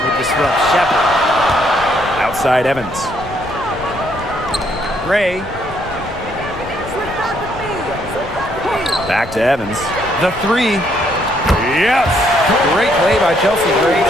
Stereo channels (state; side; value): noise; left; rumble, 15 dB below the sound